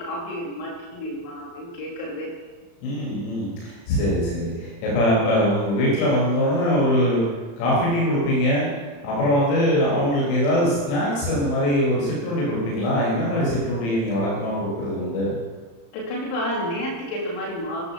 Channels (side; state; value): right; late; 35 ms